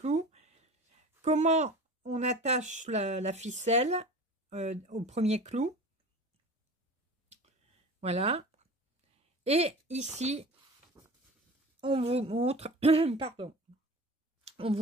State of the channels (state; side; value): normal; both; correlation 0.37